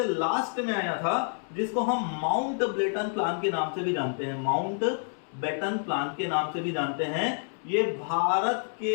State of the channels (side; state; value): right; silent; 57 dB below the other